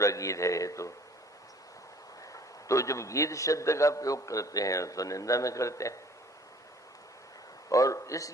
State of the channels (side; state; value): both; normal; correlation 0.54